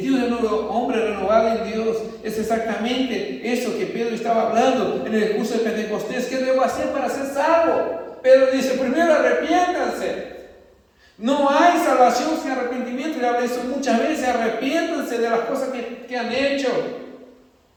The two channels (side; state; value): both; identical; correlation 1.00